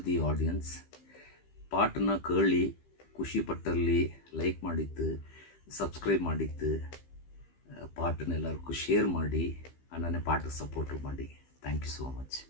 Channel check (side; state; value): right; late; 15 ms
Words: the audience. ಪಾಟನ್ನ ಕೇಳಿ ಖುಷಿ ಪಟ್ಟಲ್ಲಿ ಲೈಕ್ ಮಾಡಿದ್ದು, ಸಬ್ಸ್ಕ್ರೈಬ್ ಮಾಡಿದ್ದು, ಪಾಟನ್ನೆಲ್ಲರಿಗೂ ಶೇರ್ ಮಾಡಿ, ನನ್ನ ಪಾಠ ಸಪೋರ್ಟ್ ಮಾಡಿ. Thank you so much.